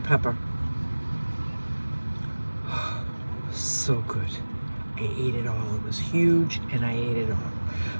pepper. So good. I ate it all. It was huge and I ate it all.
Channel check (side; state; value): both; inverted; correlation -1.00